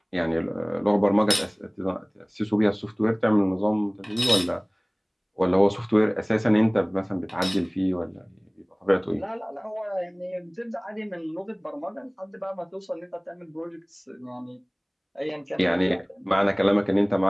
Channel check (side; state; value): both; identical; correlation 1.00